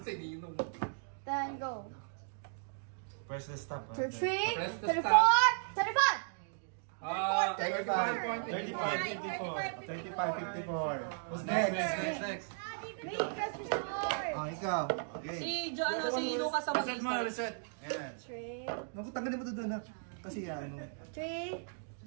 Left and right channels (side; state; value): left; silent; digital silence